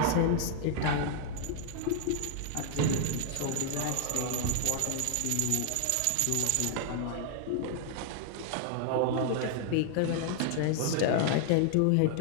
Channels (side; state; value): both; different; correlation 0.00